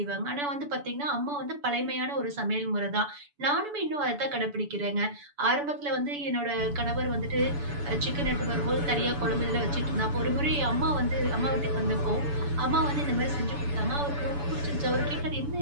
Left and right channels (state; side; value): late; left; 7.0 ms